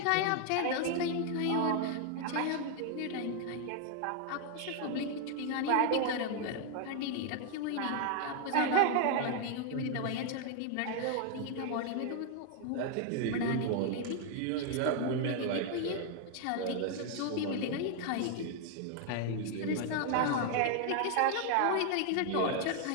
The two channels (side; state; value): both; different; correlation 0.00